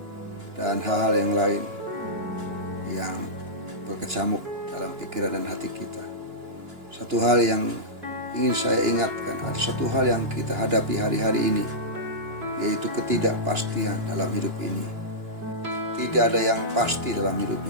dan hal-hal yang lain yang berkecamuk dalam pikiran dan hati kita. Satu hal yang ingin saya ingatkan, ada satu hal yang kita hadapi hari-hari ini, yaitu ketidakpastian dalam hidup ini. Tidak ada yang pasti dalam hidup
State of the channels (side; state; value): left; late; 2.9 ms